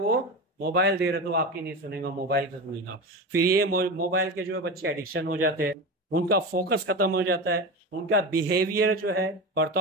मोबाइल दे रहे, तो आपकी नहीं सुनेगा, मोबाइल से सुनेगा। फिर ये मोबाइल के जो बच्चे एडिक्शन हो जाते हैं, उनका फोकस खत्म हो जाता है, उनका बिहेवियर जो है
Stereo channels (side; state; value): both; normal; correlation 0.23